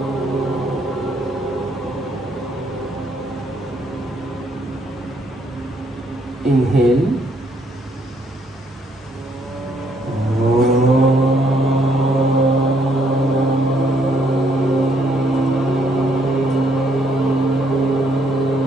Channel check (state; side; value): normal; both; correlation 0.70